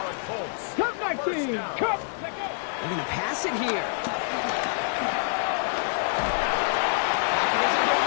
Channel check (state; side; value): silent; right; digital silence